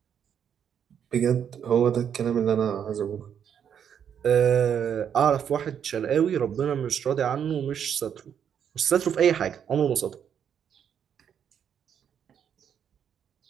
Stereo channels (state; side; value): quieter; left; 8.4 dB